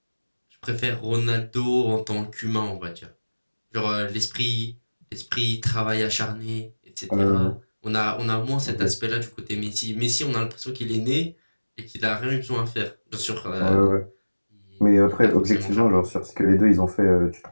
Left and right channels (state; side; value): inverted; both; correlation -1.00